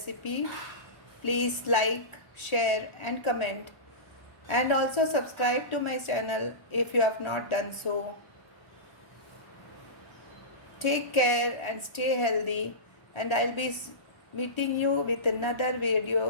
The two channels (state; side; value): late; right; 1.0 ms